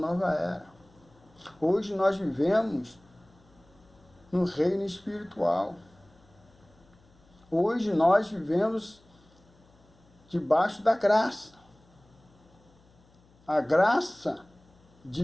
era. Hoje nós vivemos no reino espiritual. Hoje nós vivemos debaixo da graça. A graça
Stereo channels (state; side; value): noise; left; hum, 30 dB below the sound